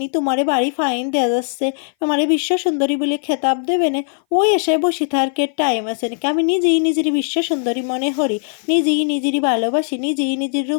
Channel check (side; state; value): right; silent; 59 dB below the other